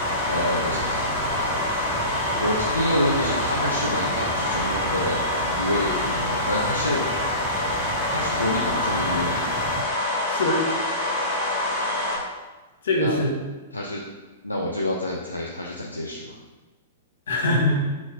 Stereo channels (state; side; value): inverted; both; correlation -0.34